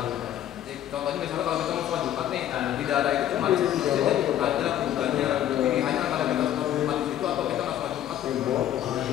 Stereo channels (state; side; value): quieter; right; 11.6 dB